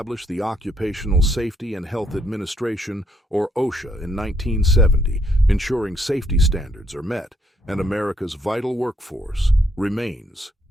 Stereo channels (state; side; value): normal; both; correlation 0.72